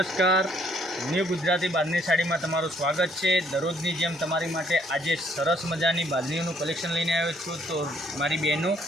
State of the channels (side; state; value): both; normal; correlation 0.66